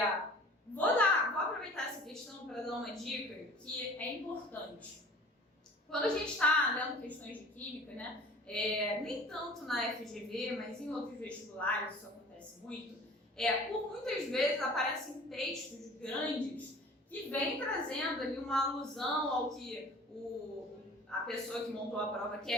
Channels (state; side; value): normal; both; correlation 0.46